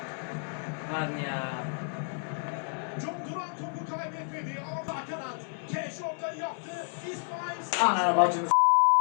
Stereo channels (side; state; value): right; silent; 58 dB below the other